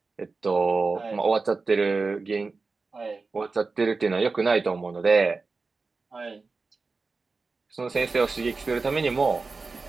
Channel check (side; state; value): left; quieter; 4.1 dB